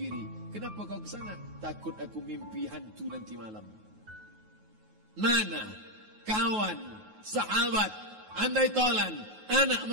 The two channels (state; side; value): late; left; 9.4 ms